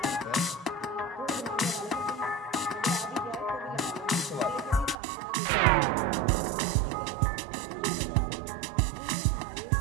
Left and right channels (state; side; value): drops out; left; at 5.0 s